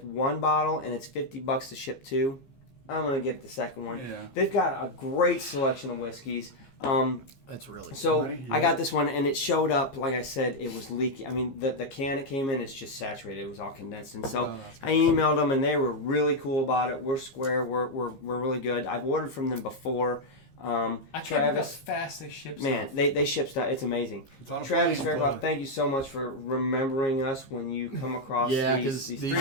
one bottle, and it's $50 to ship two. I'm gonna get the second one. Yeah. They've got a great selection of whiskeys. That's really So Money, I yeah. got this one, and it showed up. Like I said, it was leaky. I mean, the can it came in is just saturated. It was all condensed, and so I emailed them, and they were really cool about it. We're square. We're really good. I've ordered from them before. I can't Travis, believe how fast they ship man, stuff. they ship stuff. It's amazing. It's on a Travis plane, Fairclough, but- thank you so much for remembering us when you come across Yeah, these 'cause these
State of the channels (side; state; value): right; late; 15 ms